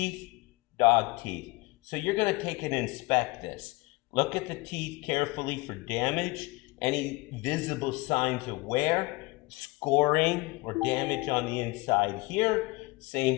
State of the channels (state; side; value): quieter; right; 23.8 dB